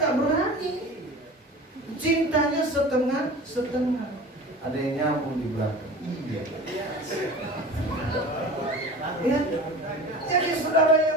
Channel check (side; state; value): both; normal; correlation 0.37